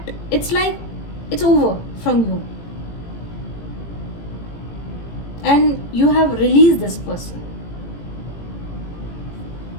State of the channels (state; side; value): late; right; 18 ms